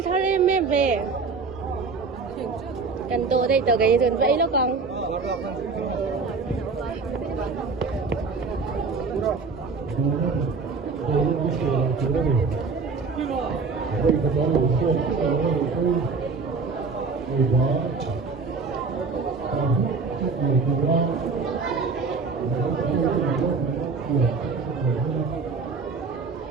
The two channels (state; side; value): quieter; left; 4.6 dB